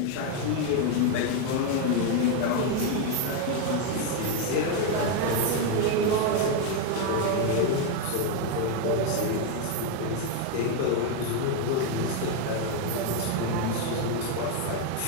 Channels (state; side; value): different; both; correlation 0.01